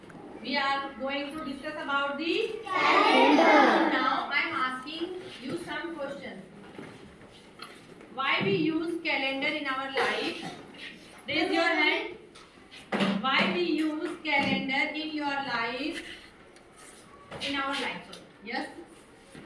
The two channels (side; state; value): both; identical; correlation 1.00